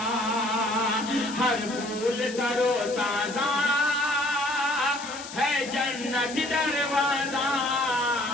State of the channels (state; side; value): noise; left; hiss, 13 dB below the sound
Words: ہر پھول تر و تازہ ہے جنتی دروازہ،